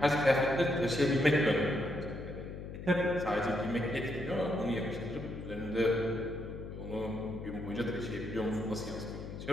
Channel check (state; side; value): noise; left; hum, 9 dB below the sound